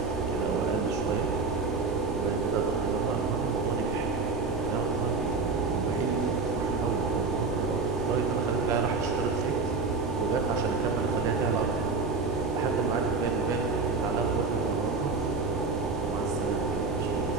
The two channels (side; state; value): left; quieter; 4.2 dB